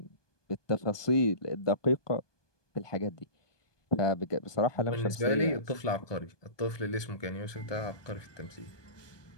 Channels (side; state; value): right; late; 1.2 ms